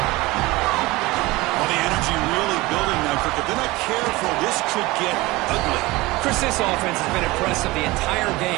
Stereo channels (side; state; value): left; quieter; 21.0 dB